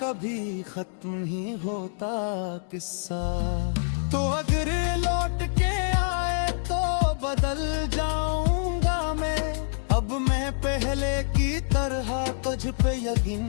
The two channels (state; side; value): silent; right; digital silence